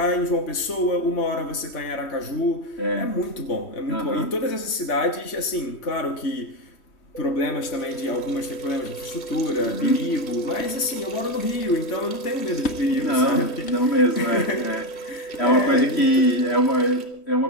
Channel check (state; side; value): late; right; 3.1 ms